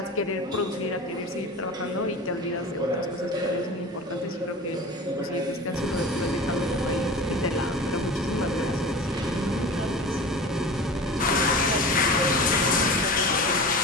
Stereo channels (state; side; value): normal; both; correlation 0.34